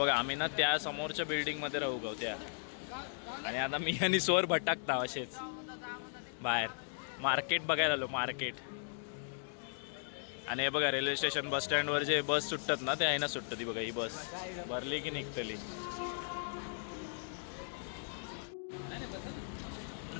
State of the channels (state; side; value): silent; right; digital silence